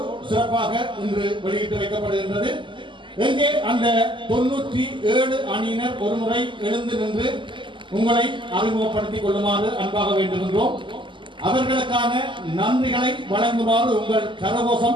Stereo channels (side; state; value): left; late; 0.24 ms